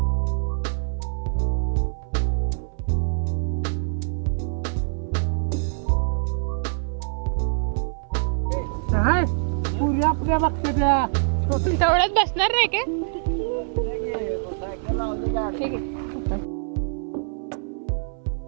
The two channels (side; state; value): left; silent; 58 dB below the other